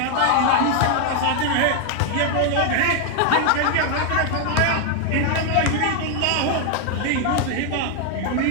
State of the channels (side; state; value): both; different; correlation 0.00